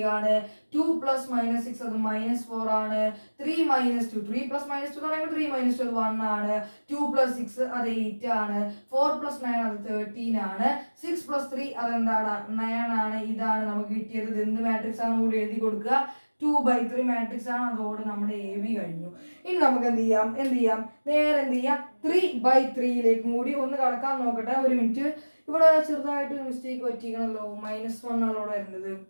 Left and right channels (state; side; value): inverted; both; correlation -1.00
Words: ആണ്. 2 + -6 അത് -4 ആണ്. 3 - 2 3 + -2 എന്ന് പറയുമ്പോൾ 3 - 2 അത് 1 ആണ്. 2 + 6 അത് 8 ആണ്. 4 + 9 അത് 13 ആണ്. 6 + 3 അതെന്താണ്? 9 ആണ്. ഇതാണ് നമുക്ക് കിട്ടിയത്. ഇത് എന്ത് മാട്രിക്സ് ആണ് കൂടി എഴുതി കൊടുക്കുക? 2/3 മാട്രിക്സ് ആണ്. അതോടെ നമ്മുടെ AB കഴിഞ്ഞു. ഇനി നമുക്ക് എന്ത് ചെയ്യാം? നേരെ എന്ത് ചെയ്യാം? 3/3യിലേക്കും കൂടി ഒന്ന് കടക്കാൻ നോക്കട്ടെ. ഒരു മിനിറ്റ്. ഇവിടെ ചെറുതായിട്ട് മിസ്റ്റേക്ക് പറ്റിക്കണല്ലോ. -1 ആണ് ഇവിടെ വരുന്നത്.